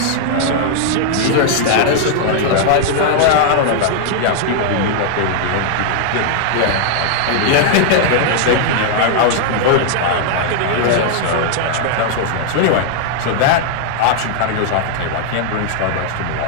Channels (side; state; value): both; different; correlation 0.00